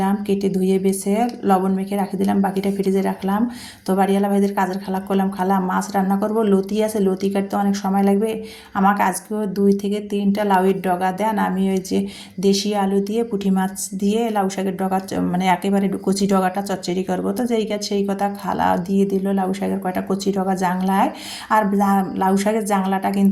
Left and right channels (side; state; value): both; identical; correlation 1.00